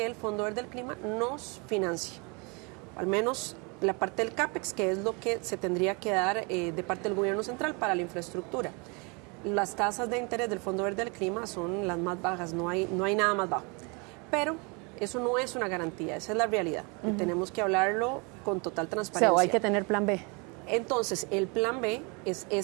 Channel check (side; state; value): left; quieter; 31.2 dB